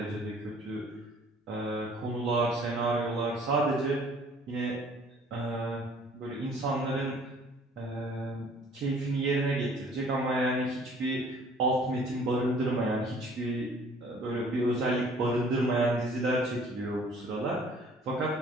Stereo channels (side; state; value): both; normal; correlation 0.55